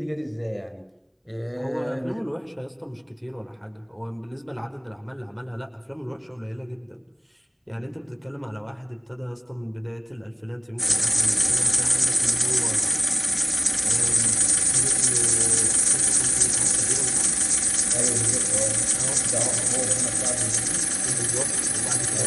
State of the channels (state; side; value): identical; both; correlation 1.00